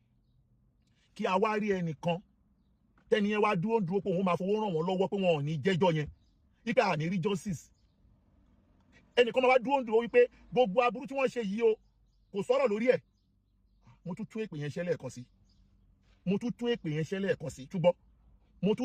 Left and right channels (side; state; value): both; identical; correlation 1.00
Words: kí a wá rí ẹnìkan tẹ́ni yẹn wá dúró pé òun máa fowó ràn wọ́n lọ́wọ́ pé wọn ò ní jẹ́jọ́ yẹn wípé à ní rí justice ẹnìkan máa wá dúró wípé gbogbo aburú tí wọ́n ṣe yìí o kò sọ̀rọ̀ lórí ẹ̀ mo tún tún èpè yẹn ṣẹ́ lẹ́ẹ̀kan sí túbọ̀ mo